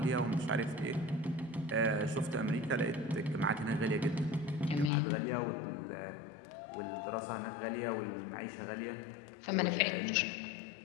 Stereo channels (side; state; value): right; drops out; at 4.9 s